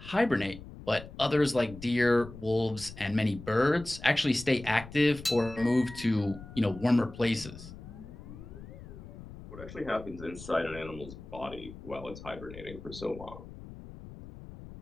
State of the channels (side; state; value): left; noise; rumble, 15 dB below the sound